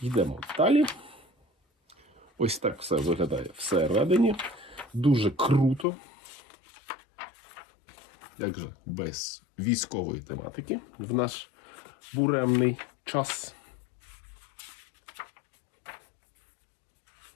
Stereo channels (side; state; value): right; drops out; at 5.9 s